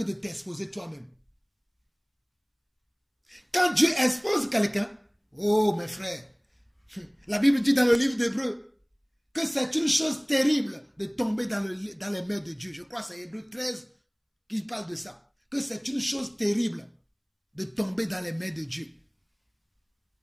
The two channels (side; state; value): both; identical; correlation 1.00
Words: de t'exposer toi-même. Quand Dieu expose quelqu'un, oh mes frères, la Bible dit dans le livre d'Hébreux que c'est une chose terrible de tomber dans les mains de Dieu. Je crois que c'est Hébreux 13 qui parle de ça. Que c'est une chose terrible de tomber dans les mains de Dieu.